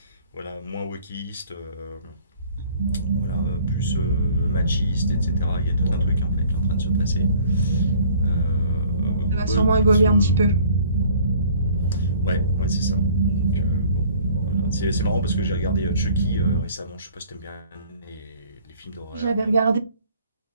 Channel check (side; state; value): both; inverted; correlation -0.54